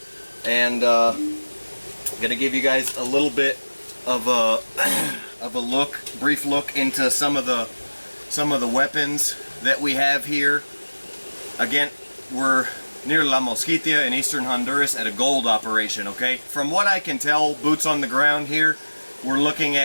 and gonna give you guys a little bit of a brief look into some of the weapons that we have here. Again, we're near La Mosquitia in eastern Honduras at a gold operation, okay? From what I can tell, boots on the ground here, we're looking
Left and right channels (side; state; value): both; inverted; correlation -1.00